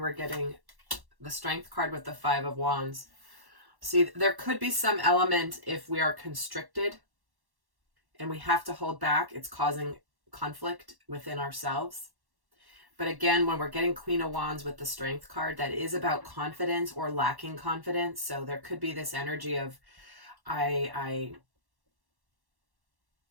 we're getting the Strength card with the 5 of Wands. See, there could be some element if we are constricted and we have to hold back, it's causing conflict within ourselves. But again, when we're getting Queen of Wands with the Strength card, that is about confidence or lacking confidence. So there could be this energy of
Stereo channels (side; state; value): left; late; 1.1 ms